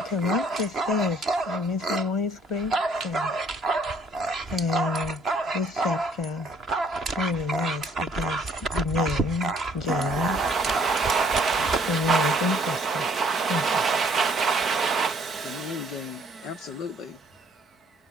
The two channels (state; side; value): normal; both; correlation 0.61